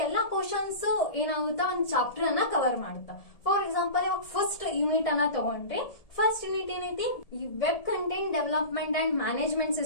ಕ್ವಶನ್ಸ್ ಏನಾಗುತ್ತಾ, ಒಂದು ಚಾಪ್ಟರ್ ಅನ್ನ ಕವರ್ ಮಾಡುತ್ತಾ. ಫಾರ್ ಎಕ್ಸಾಂಪಲ್, ಇವಾಗ ಫಸ್ಟ್ ಯೂನಿಟ್ ಅನ್ನ ತಗೊಂಡ್ರೆ, ಫಸ್ಟ್ ಯೂನಿಟ್ ಏನೈತಿ, ಈ web content development and management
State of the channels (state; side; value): late; right; 1.7 ms